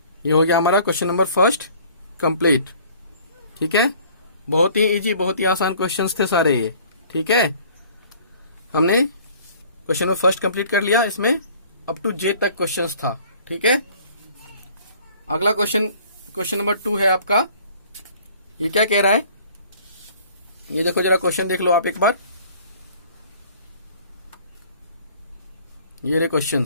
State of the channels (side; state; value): both; inverted; correlation -0.53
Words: ये हो गया हमारा क्वेश्चन नंबर फर्स्ट कंप्लीट। ठीक है, बहुत ही इजी, बहुत ही आसान क्वेश्चंस थे सारे ये। ठीक है, हमने क्वेश्चन नंबर फर्स्ट कंप्लीट कर लिया, इसमें अप टू जे तक क्वेश्चंस था। ठीक है, अगला क्वेश्चन नंबर 2 है आपका। ये क्या कह रहा है, ये देखो जरा, क्वेश्चन देख लो आप एक बार, ये रहे